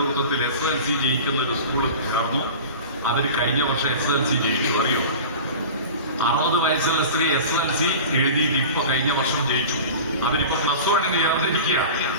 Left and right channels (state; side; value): inverted; both; correlation -0.35